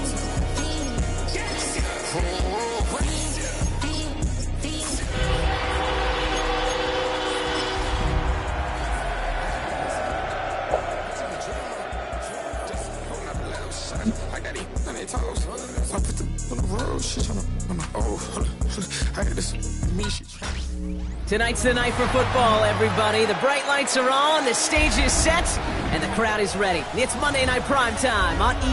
I got it on their toes. So I put them on the road. She trying to. I got this. Me, she trying. Tonight's the night for football, everybody. The bright lights are on, the stage is set, and the crowd is ready. It's Monday Night Primetime on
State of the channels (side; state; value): both; identical; correlation 1.00